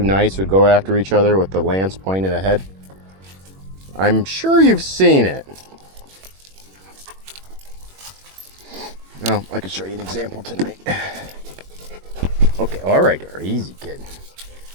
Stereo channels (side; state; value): left; late; 21 ms